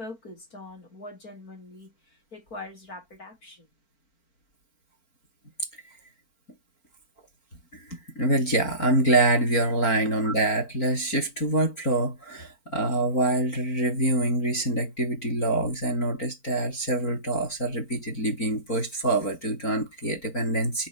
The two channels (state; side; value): late; right; 4.4 ms